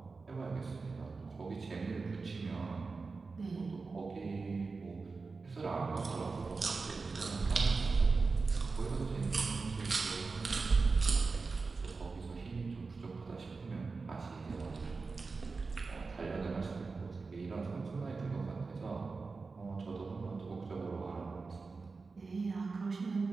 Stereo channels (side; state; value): left; quieter; 4.2 dB